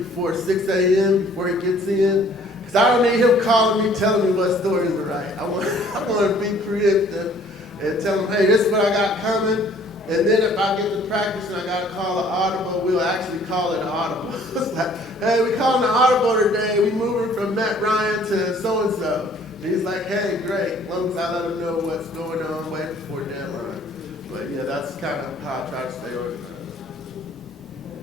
6 a.m., before he gets in. Because I don't need him calling me, telling me what stories to write. I want to be preemptive and tell him, hey, this is what I got coming. And then if I get to practice and I got to call an audible, we'll actually call it an audible. It's like, hey, we calling an audible today. We moving from Matt Ryan to so-and-so. And he's like, hey, great. As long as I let him know what's going on way before deadline. But yeah, that's kind of how I try to stay organized.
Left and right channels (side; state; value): both; normal; correlation 0.56